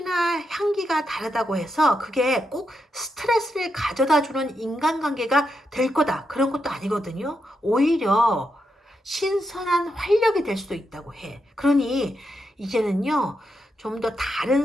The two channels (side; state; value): both; normal; correlation 0.84